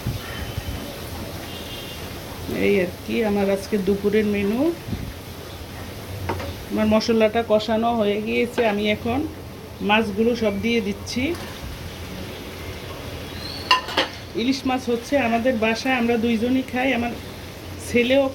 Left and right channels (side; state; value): both; identical; correlation 1.00